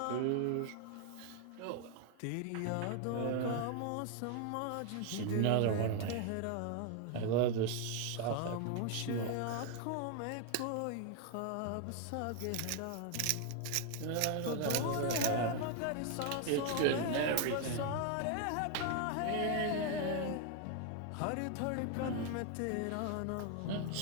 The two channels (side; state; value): both; different; correlation 0.01